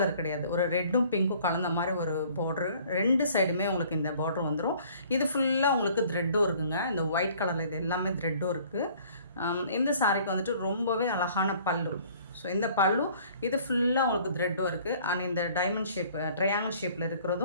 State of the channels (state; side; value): inverted; both; correlation -0.54